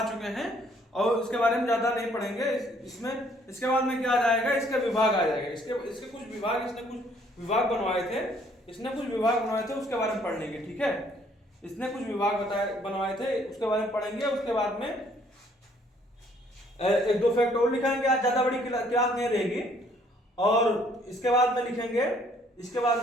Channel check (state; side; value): normal; both; correlation 0.63